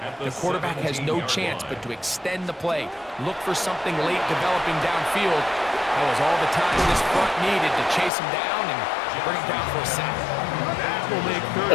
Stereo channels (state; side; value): drops out; right; at 8.1 s